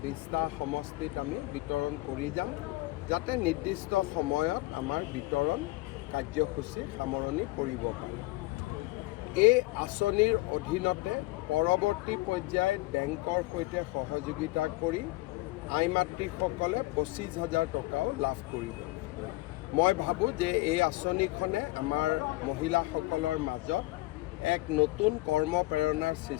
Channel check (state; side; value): quieter; right; 20.2 dB